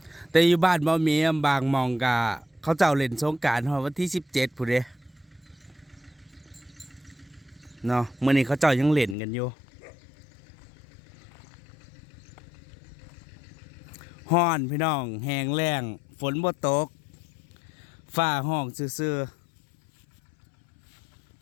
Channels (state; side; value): drops out; right; at 9.2 s